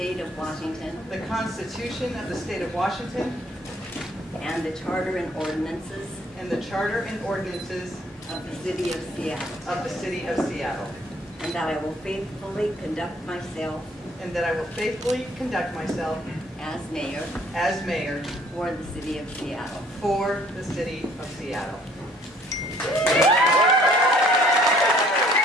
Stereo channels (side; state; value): both; normal; correlation 0.59